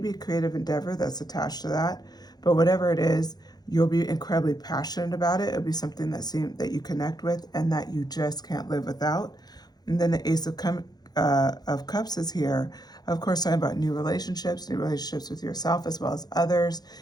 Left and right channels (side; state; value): right; late; 0.19 ms